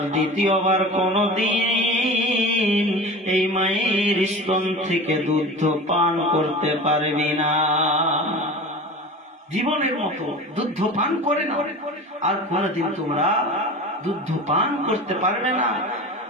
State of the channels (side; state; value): both; normal; correlation 0.34